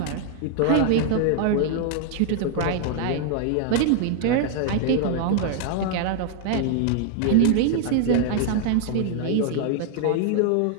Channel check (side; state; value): both; different; correlation 0.00